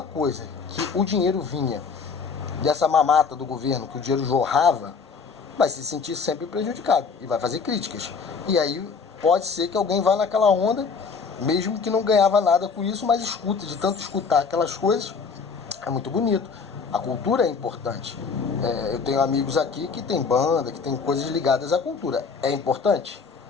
coisa que o dinheiro vinha dessa mamata do governo, que o dinheiro jorrava, vai se sentir sempre prejudicado e vai fazer críticas. E aí pode ser que alguém vá naquela onda, mesmo que não ganhava nada com isso, mas escuta, de tanto escutar aquelas coisas, é muito bonito. A cultura é importante. Eu tenho amigos aqui que tem banda, que tem coisas ligadas à cultura. É importante?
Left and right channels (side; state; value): right; quieter; 5.3 dB